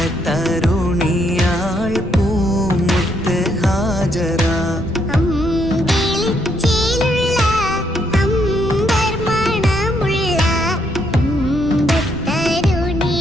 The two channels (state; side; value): noise; left; rumble, 12 dB below the sound